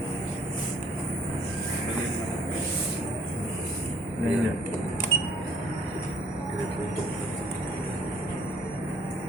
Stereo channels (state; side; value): normal; both; correlation 0.59